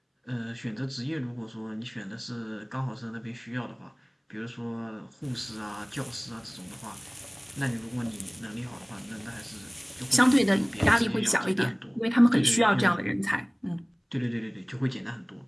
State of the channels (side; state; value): both; identical; correlation 1.00